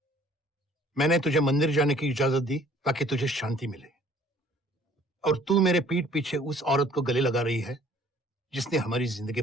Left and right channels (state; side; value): normal; both; correlation 0.56